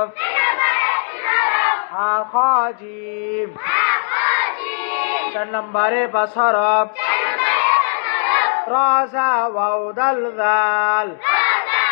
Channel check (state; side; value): silent; right; digital silence